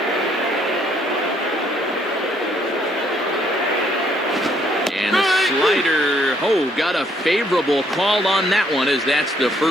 And a slider. Oh, got a favorable call on that one as that's the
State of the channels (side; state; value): both; normal; correlation 0.68